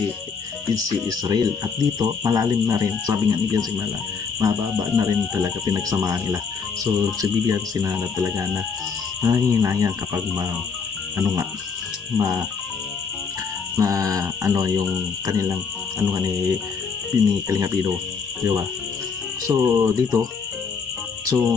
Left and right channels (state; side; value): quieter; right; 5.7 dB